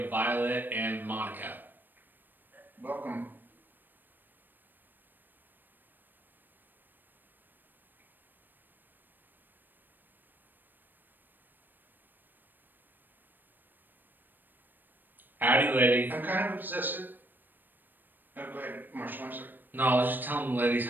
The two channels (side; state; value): left; late; 0.092 ms